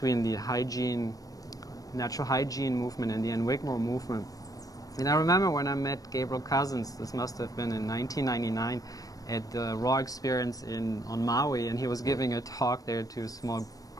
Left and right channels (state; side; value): late; right; 0.18 ms